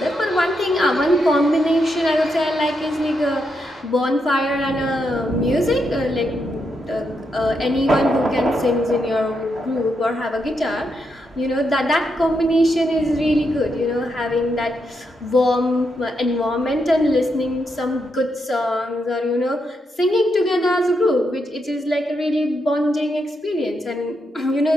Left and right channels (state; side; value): normal; both; correlation 0.82